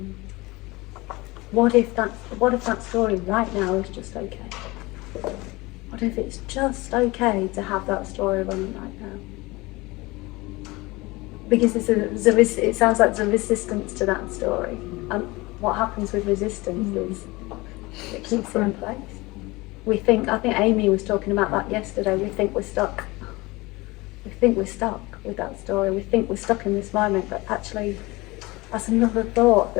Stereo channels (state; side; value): quieter; right; 22.4 dB